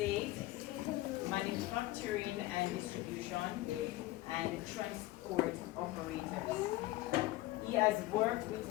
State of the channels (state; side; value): quieter; right; 17.5 dB